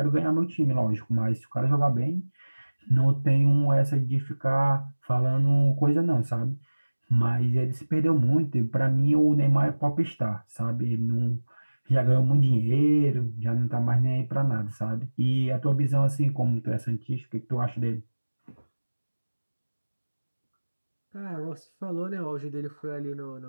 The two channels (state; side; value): inverted; both; correlation -1.00